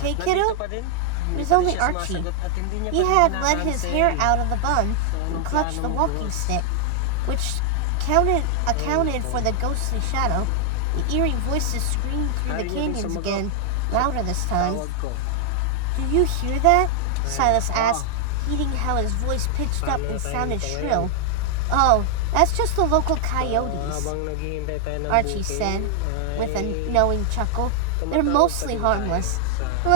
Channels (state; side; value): different; both; correlation 0.00